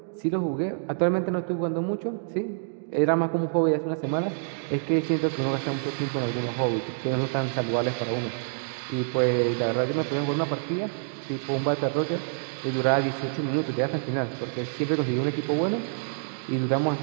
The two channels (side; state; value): left; silent; digital silence